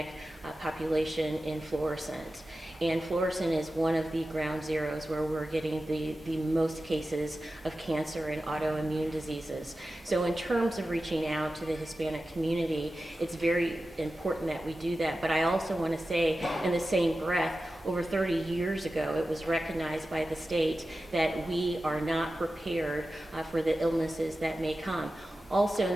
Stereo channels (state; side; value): normal; both; correlation 0.94